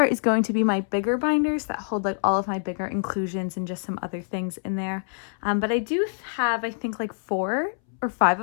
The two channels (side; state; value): right; silent; 61 dB below the other